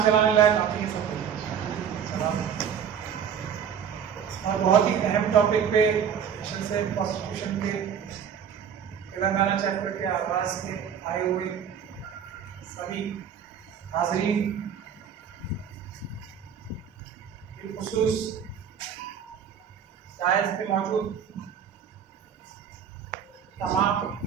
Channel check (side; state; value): left; quieter; 7.9 dB